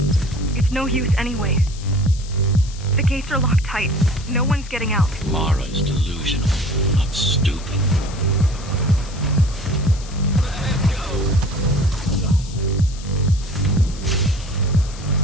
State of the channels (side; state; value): left; noise; hiss, 17 dB below the sound